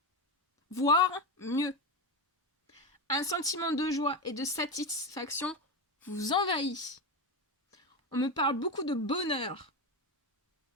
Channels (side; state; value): both; normal; correlation 0.15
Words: voire mieux. Un sentiment de joie et de satisfaction vous envahit. On me parle beaucoup de bonheur.